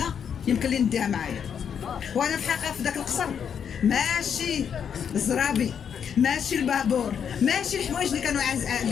يمكن لي نديها معايا، وانا في الحقيقه في ذاك القصر ماشي الزرابي، ماشي البابور، ماشي الحوايج اللي كانوا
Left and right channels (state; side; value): quieter; right; 7.8 dB